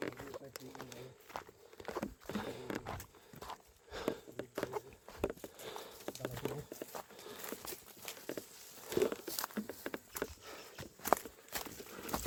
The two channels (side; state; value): both; identical; correlation 1.00